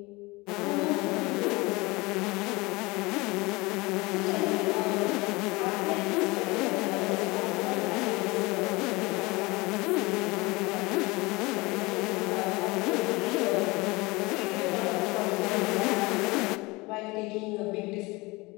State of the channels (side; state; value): right; quieter; 23.6 dB